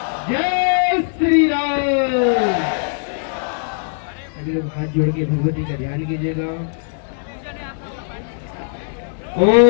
हाथ जोड़ के भगवती का ध्यान कीजिएगा।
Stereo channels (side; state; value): right; silent; digital silence